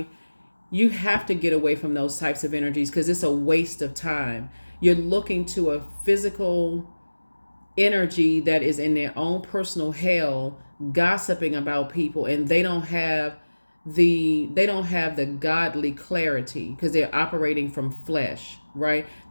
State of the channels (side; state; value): both; inverted; correlation -1.00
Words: You have to get away from those types of energies because it's a waste of time. You're looking to a physical energy that is in their own personal hell, gossiping about people, and they don't have the godly clarity because they're operating from flesh, right?